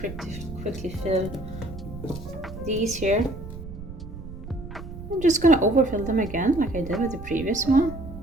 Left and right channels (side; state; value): right; noise; rumble, 12 dB below the sound